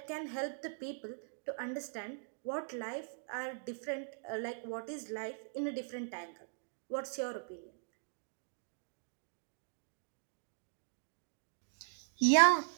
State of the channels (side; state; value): left; silent; digital silence